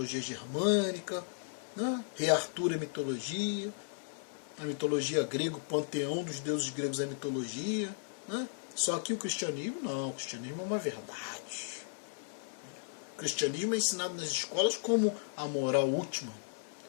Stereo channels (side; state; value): right; silent; 54 dB below the other